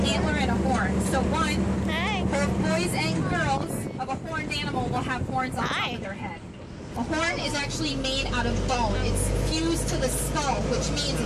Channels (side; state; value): both; identical; correlation 1.00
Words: antler and a horn. So one, both boys and girls of a horned animal will have horns on top of their head. A horn is actually made out of bone. It's fused to the skull, which means